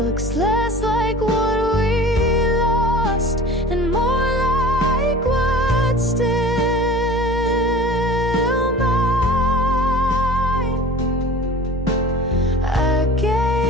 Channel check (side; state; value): both; normal; correlation 0.40